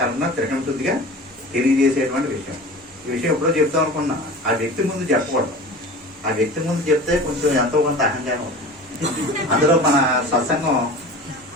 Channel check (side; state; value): both; normal; correlation 0.37